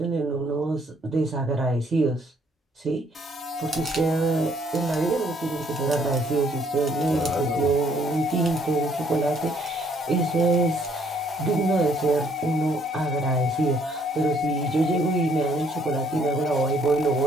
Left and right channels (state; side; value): normal; both; correlation 0.66